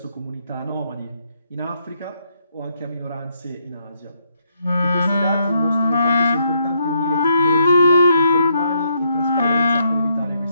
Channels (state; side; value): inverted; both; correlation -0.75